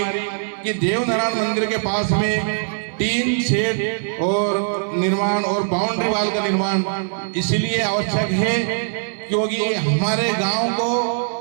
कि देवनारायण मंदिर के पास में टीन शेड और निर्माण और बाउंड्री वाल का निर्माण इसलिए आवश्यक है क्योंकि हमारे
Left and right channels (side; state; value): left; silent; 60 dB below the other